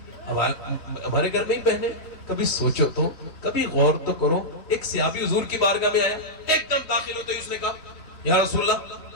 ہمارے گھر میں ہی بہنیں, کبھی سوچو تو, کبھی غور تو کرو, ایک صحابی حضور کی بارگاہ میں آیا, ایک دم داخل ہوتے ہی اس نے کہا یا رسول اللہ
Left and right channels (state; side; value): late; right; 3.1 ms